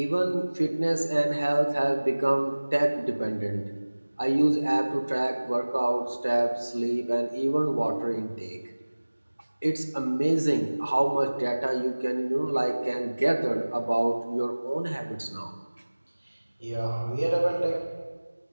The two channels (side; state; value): both; inverted; correlation -1.00